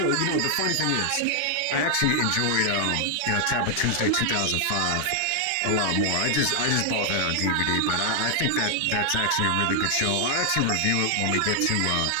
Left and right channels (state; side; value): different; both; correlation 0.00